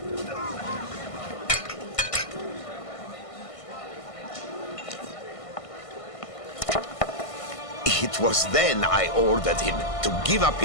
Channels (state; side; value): late; right; 1.5 ms